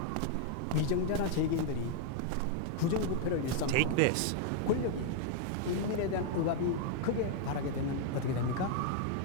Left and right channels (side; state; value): both; different; correlation 0.00